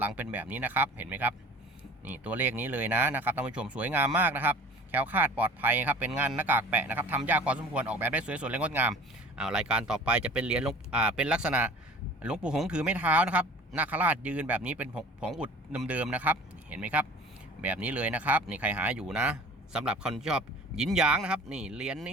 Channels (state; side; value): normal; both; correlation 0.44